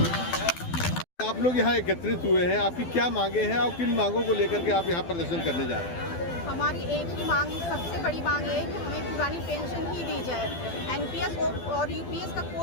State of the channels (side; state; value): right; late; 12 ms